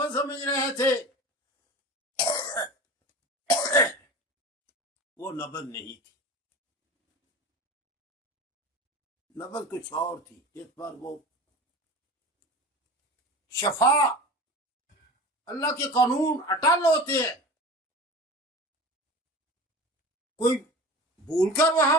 समझ रहे थे वो नबज नहीं थी, नबज कुछ और थी, जिस पर वो शफा, अल्लाह के कानून अटल होते हैं। कोई भूलकर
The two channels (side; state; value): both; normal; correlation 0.34